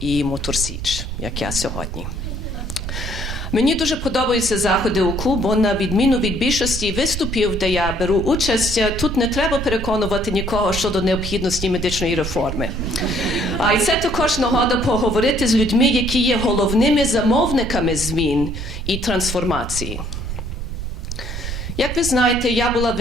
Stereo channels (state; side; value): noise; right; rumble, 6 dB below the sound